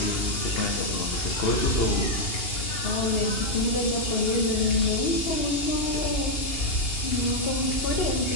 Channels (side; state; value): right; late; 2.8 ms